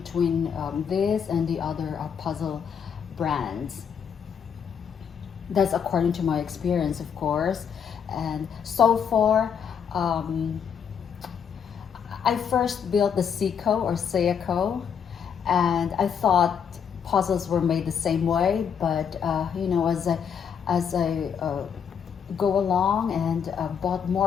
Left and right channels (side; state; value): right; quieter; 7.4 dB